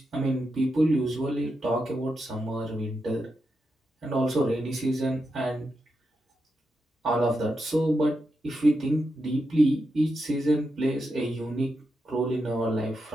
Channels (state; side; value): normal; both; correlation 0.86